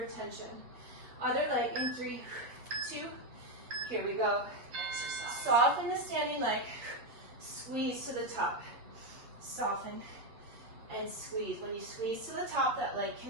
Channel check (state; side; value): late; left; 8.3 ms